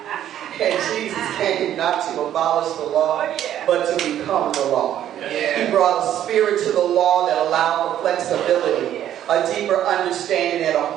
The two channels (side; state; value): left; quieter; 11.2 dB